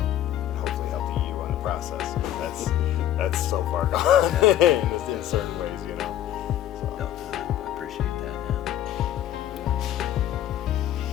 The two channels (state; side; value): quieter; right; 11.9 dB